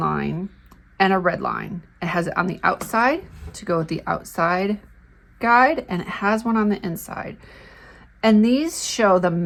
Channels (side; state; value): both; identical; correlation 1.00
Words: and a red line. It has it on the outside to go with the outside guide, and it has one on the inside. And these show the